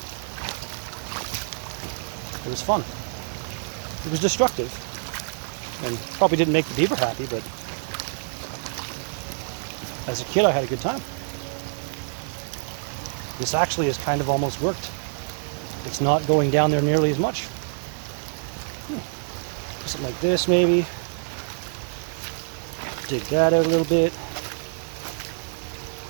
It was fun. It was destructive. And probably didn't make the beaver happy, but as a kid I had a good time. This actually has kind of almost worked. It's not going down there nearly as much. Something like this maybe. Dig that out a little bit.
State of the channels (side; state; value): left; silent; 61 dB below the other